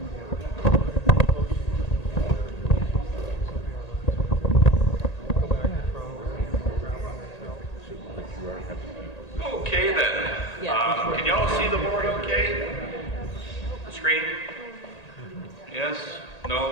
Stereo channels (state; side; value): late; right; 1.8 ms